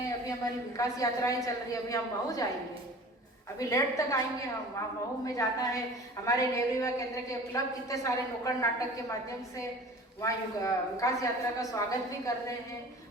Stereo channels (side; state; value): both; normal; correlation 0.42